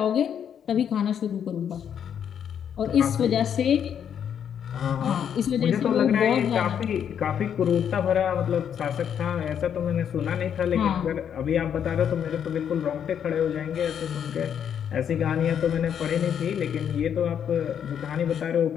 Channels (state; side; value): quieter; right; 8.6 dB